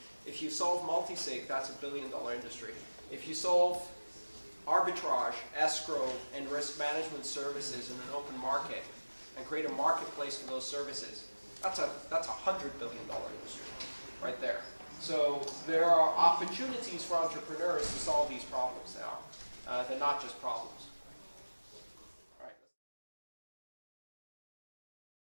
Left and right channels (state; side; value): inverted; both; correlation -1.00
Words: If you solve multi-sig, that's a $1 billion industry. If you solve arbitrage, escrow, and risk management services in an open market, and create a marketplace for those services, that's a $100 billion industry right there. So there are opportunities for entrepreneurs to solve these problems now. They're not just problems.